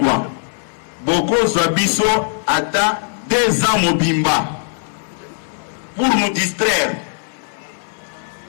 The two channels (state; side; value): silent; right; 67 dB below the other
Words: Beaucoup Zabiso attend 2 ans mobimba pour nous distraire.